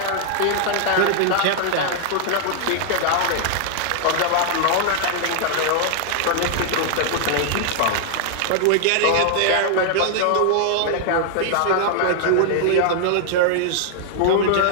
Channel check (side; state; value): both; different; correlation -0.01